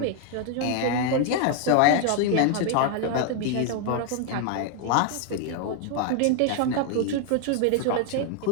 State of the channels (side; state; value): both; different; correlation 0.00